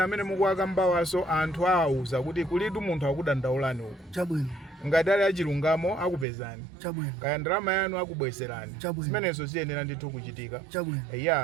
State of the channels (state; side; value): drops out; left; at 6.2 s